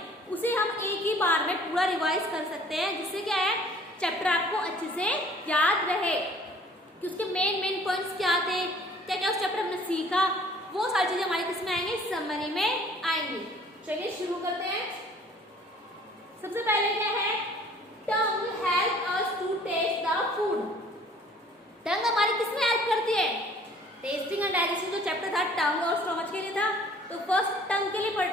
उसे हम एक ही बार में पूरा रिवाइज कर सकते हैं, जिससे क्या है चैप्टर आपको अच्छे से याद रहे कि उसके मेन पॉइंट्स क्या थे, क्या क्या उस चैप्टर हमने सीखा। वो सारी चीजें हमारे किस में आएंगे, समरी में आएंगी। चलिए शुरू करते हैं। सबसे पहले क्या है, tongue help us to taste the food. Tongue हमारी किस में हेल्प करती है, टेस्टिंग एंड डाइजेस्टिंग जो चैप्टर था टंग और स्टमच के लिए था, तो फर्स्ट टंग के लिए पढ़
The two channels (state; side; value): normal; both; correlation 0.54